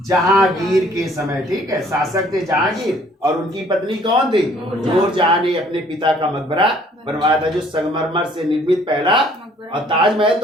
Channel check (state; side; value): normal; both; correlation 0.59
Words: जहांगीर के समय, ठीक है। शासक थे जहांगीर, और उनकी पत्नी कौन थी? नूरजहां ने अपने पिता का मकबरा बनवाया था, जो संगमरमर से निर्मित पहला। और ताजमहल